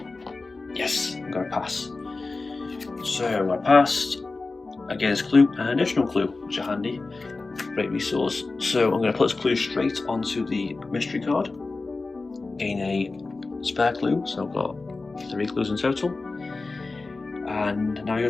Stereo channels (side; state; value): right; quieter; 3.7 dB